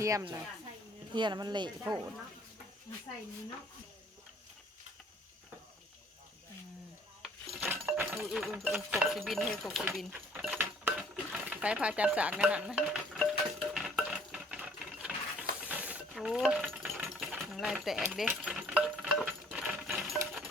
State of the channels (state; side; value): normal; both; correlation 0.58